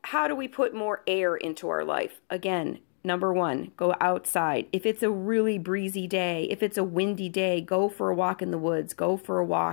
how do we put more air into our life? Again, number one, go outside. If it's a really breezy day, if it's a windy day, go for a walk in the woods. Go for a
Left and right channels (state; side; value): silent; right; digital silence